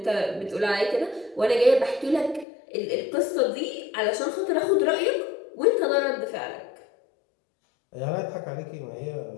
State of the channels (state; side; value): drops out; right; at 2.5 s